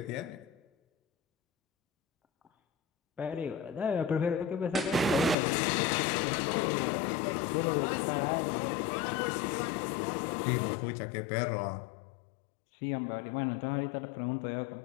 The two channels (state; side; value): drops out; right; at 5.4 s